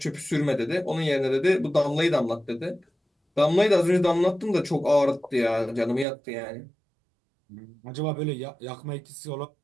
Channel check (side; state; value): left; drops out; at 6.1 s